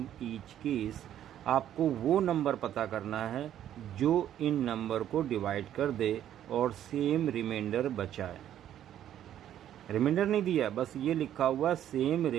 each case. आपको वो number पता करना है जो इन number को divide कर दे और सेम रिमाइंडर बचाए। रिमाइंडर नहीं दिया, बस ये लिखा हुआ सेम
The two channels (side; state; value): left; quieter; 11.1 dB